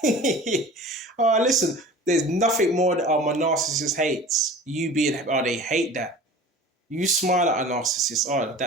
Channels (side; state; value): both; normal; correlation 0.40